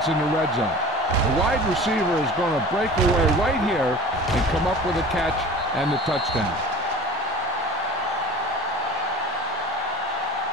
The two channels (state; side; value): normal; both; correlation 0.40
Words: in the red zone. The wide receiver is going to break away right here and come up with a catch and the touchdown.